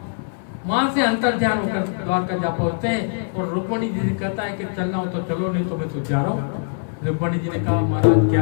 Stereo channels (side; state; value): right; silent; digital silence